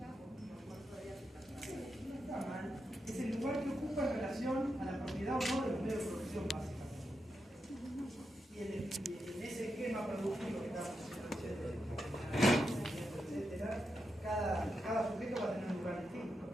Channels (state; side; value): normal; both; correlation 0.86